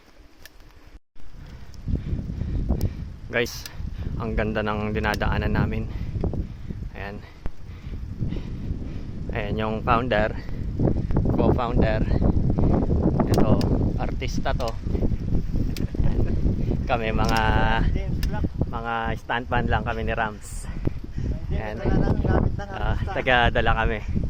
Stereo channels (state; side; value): identical; both; correlation 1.00